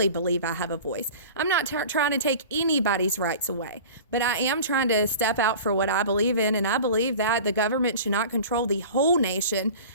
believe I have a voice. I'm not trying to take anybody's rights away, but I am trying to step out for what I believe in, and I believe that the government should not control the whole nation.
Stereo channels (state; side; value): inverted; both; correlation -0.38